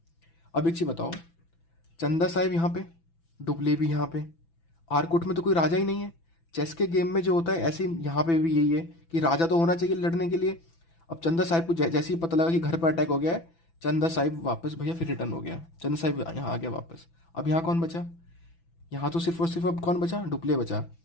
अब एक चीज बताओ, चंदा साहिब यहाँ पे, डुप्ले भी यहाँ पे। आरकोट में तो कोई राजा ही नहीं है। चेस के गेम में जो होता है, ऐसे ही यहाँ पे भी यही है कि राजा तो होना चाहिए लड़ने के लिए। अब चंदा साहिब को जैसे ही पता लगा कि घर पर अटैक हो गया है, चंदा साहिब वापस भैया फिर रिटर्न हो गया। चंदा साहिब यहाँ आ गया वापस। अब यहाँ कौन बचा? यहाँ तो सिर्फ और सिर्फ अब कौन बचा? डुप्ले बचा।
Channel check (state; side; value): late; right; 6.0 ms